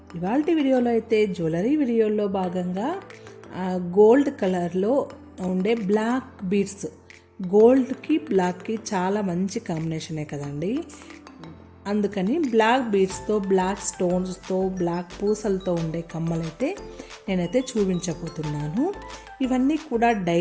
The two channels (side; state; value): both; identical; correlation 1.00